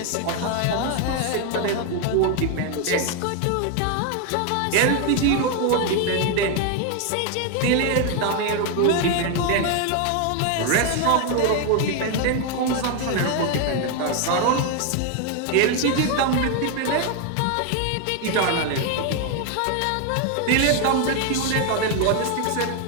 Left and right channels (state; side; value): different; both; correlation 0.01